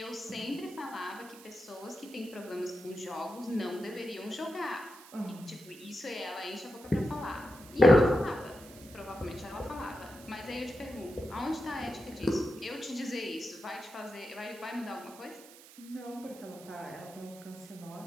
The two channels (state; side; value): noise; right; hiss, 19 dB below the sound